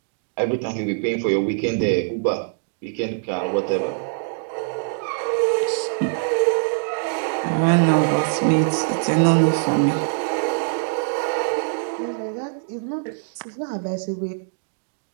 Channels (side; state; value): left; silent; digital silence